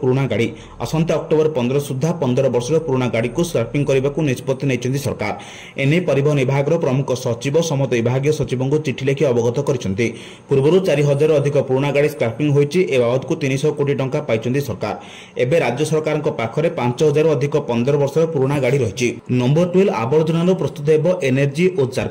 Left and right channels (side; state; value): both; identical; correlation 1.00